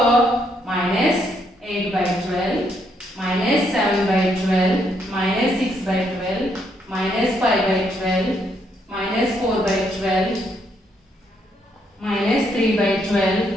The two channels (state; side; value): normal; both; correlation 0.74